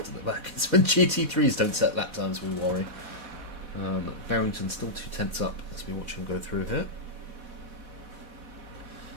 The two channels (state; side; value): late; left; 4.1 ms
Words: at the back. It's when GT3s don't set lap times we worry. Barrington still 2 tenths up as we watch him go through here.